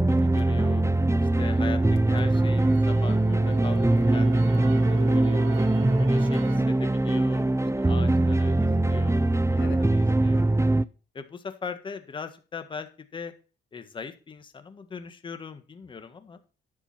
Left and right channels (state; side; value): normal; both; correlation 0.96